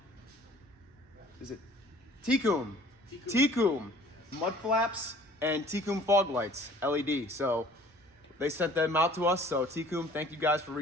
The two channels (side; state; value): both; normal; correlation 0.52